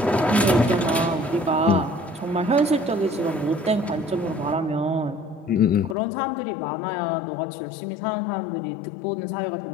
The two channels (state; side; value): drops out; right; at 6.0 s